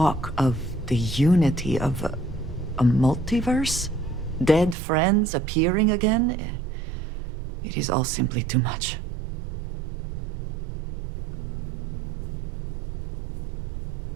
of the unity of a multiverse? Dead friends appearing again? It is all simply too much.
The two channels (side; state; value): left; drops out; at 4.8 s